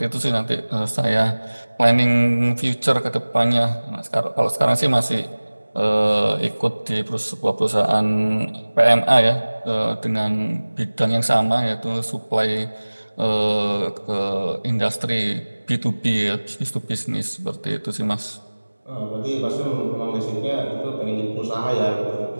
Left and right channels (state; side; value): inverted; both; correlation -1.00